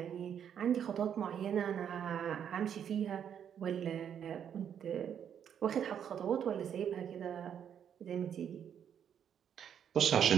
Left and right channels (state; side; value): quieter; left; 8.7 dB